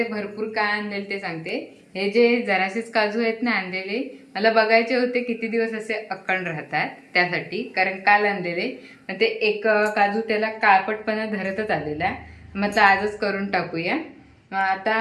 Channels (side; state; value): both; identical; correlation 1.00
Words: भरपूर काय आणलेले ते सांगते. हे जे जरासेच काजू आहेत ना आणलेले, मला बघायचे होते किती दिवस असे अखंड राहतात त्यासाठी, कारण काल आणलेले. मग ते एक काजू त्याला काळपटपणा धरतच आलेला. मग आजच करून टाकूया. मग आता